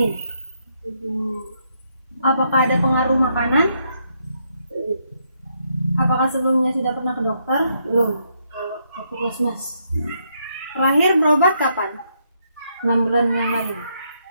Apakah ada pengaruh makanan? Apakah sebelumnya sudah pernah ke dokter? Belum. Kalau ke puskesmas Terakhir berobat kapan? 6 bulan yang lalu.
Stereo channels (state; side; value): inverted; both; correlation -0.76